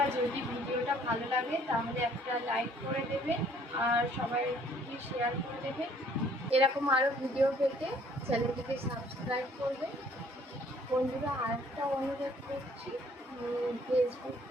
যদি ভিডিওটা ভালো লাগে তাহলে একটা লাইক করে দেবেন আর সবাইকে শেয়ার করে দেবেন। এরকম আরও ভিডিও পেতে চ্যানেলটিকে সাবস্ক্রাইব করবেন। বন্ধুরা, আরেকটা অনুরোধ করছি, ফেসবুক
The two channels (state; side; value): normal; both; correlation 0.60